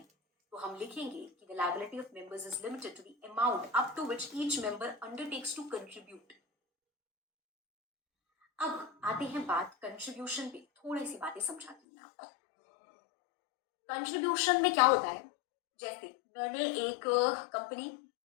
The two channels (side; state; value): right; drops out; at 11.8 s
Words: तो हम लिखेंगे कि the liability of members is limited to the amount up to which each member undertakes to contribute। अब आते हैं बात कंट्रीब्यूशन पे, थोड़ी सी बातें समझाती हूँ मैं आपको। कंट्रीब्यूशन में क्या होता है, जैसे मैंने एक कंपनी